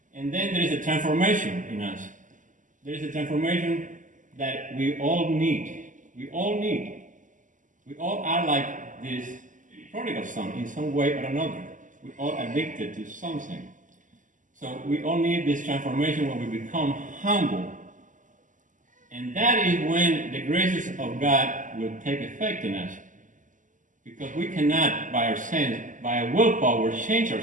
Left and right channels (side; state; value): left; late; 0.37 ms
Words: And then there is a transformation in us. There is a transformation that we all need. We all need. We all are like this prodigal son in some way or another. We all addicted to something. So we all need this transformation when we become humble. And that is when the graces of God will take effect in us. Because we cannot, by our sense, by our willpower, change